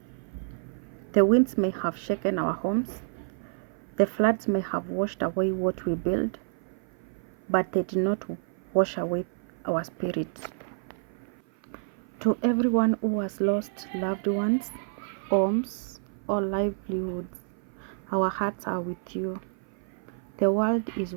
The winds may have shaken our homes, the floods may have washed away what we built, but they did not wash away our spirits. To everyone who has lost loved ones, homes, or livelihoods, our hearts are with you. The world is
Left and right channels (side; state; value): left; silent; 55 dB below the other